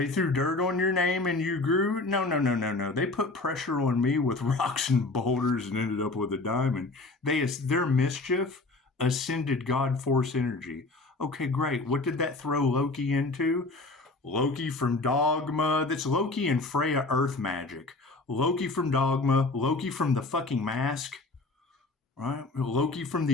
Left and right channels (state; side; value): quieter; right; 3.3 dB